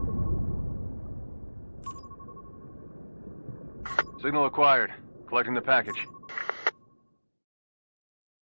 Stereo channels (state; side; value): inverted; both; correlation -1.00